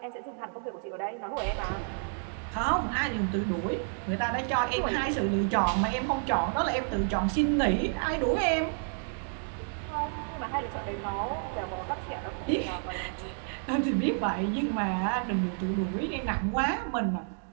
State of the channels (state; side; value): silent; left; 58 dB below the other